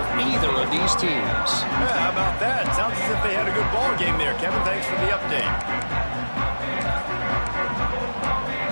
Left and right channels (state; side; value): inverted; both; correlation -1.00